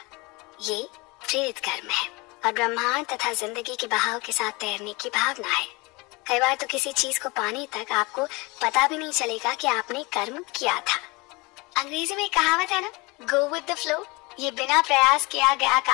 ये प्रेरित कर्म है और ब्रह्मांड तथा जिंदगी के बहाव के साथ तैरने की भावना है। कई बार तो किसी चीज को पाने तक आपको पता भी नहीं चलेगा कि आपने कर्म किया था। अंग्रेजी में कहावत है ना, गो विद द फ्लो। ये बिना प्रयास किया गया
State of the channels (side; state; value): right; quieter; 25.4 dB